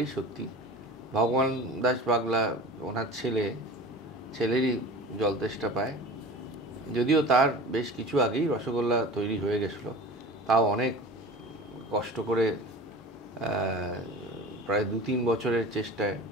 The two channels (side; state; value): both; normal; correlation 0.37